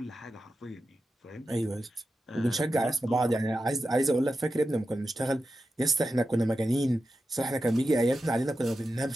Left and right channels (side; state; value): both; normal; correlation 0.90